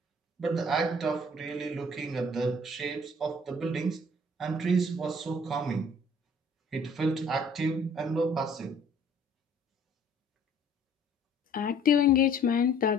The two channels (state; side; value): normal; both; correlation 0.55